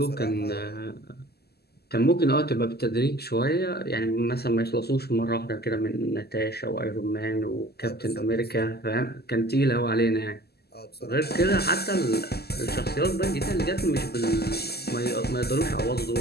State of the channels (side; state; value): right; late; 0.46 ms